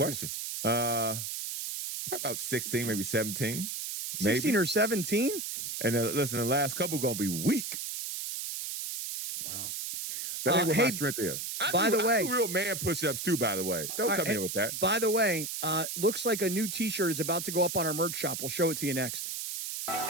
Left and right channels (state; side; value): noise; right; hiss, 5 dB below the sound